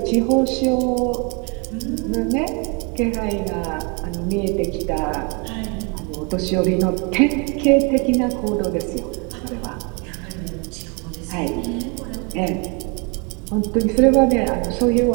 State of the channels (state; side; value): quieter; left; 33.0 dB